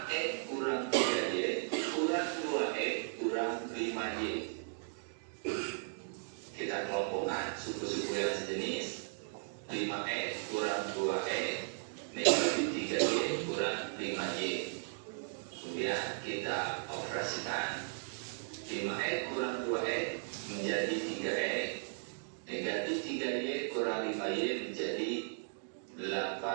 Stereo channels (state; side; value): silent; left; digital silence